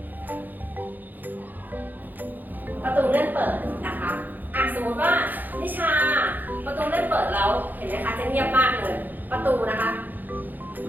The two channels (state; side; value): late; left; 0.086 ms